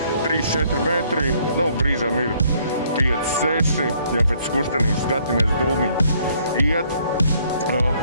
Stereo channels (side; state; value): both; inverted; correlation -0.65